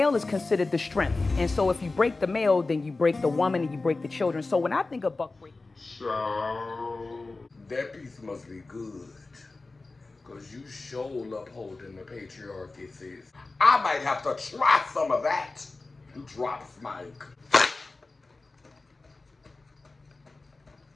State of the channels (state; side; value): quieter; right; 3.5 dB